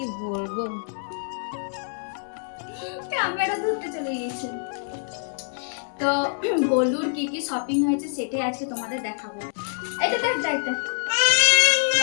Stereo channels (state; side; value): silent; right; digital silence